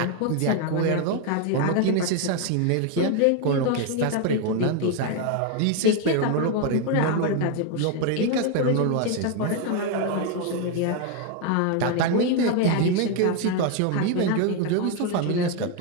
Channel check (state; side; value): different; both; correlation 0.01